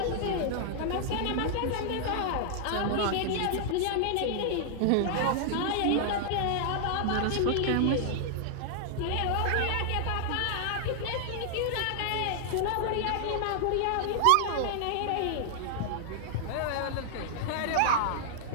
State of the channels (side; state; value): both; different; correlation -0.01